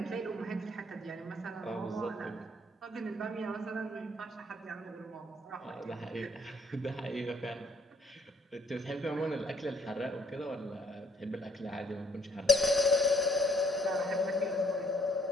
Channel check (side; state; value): both; normal; correlation 0.65